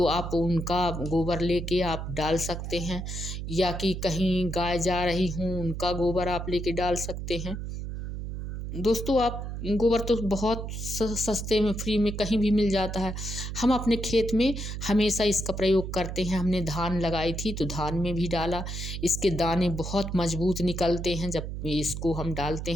आप उनका गोबर लेके आप डाल सकते हैं, या कि कहीं गाय जा रही हों उनका गोबर आप लेके डाल सकते हैं। दोस्तों आप गोबर तो बहुत सस्ते में फ्री में कहीं भी मिल जाता है। हम अपने खेत में हमेशा इसका प्रयोग करते हैं। हमने धान लगाई थी तो धान में भी डाला। इसके दाने बहुत मजबूत निकलते हैं जब इसको हम डालते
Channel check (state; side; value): noise; right; hum, 6 dB below the sound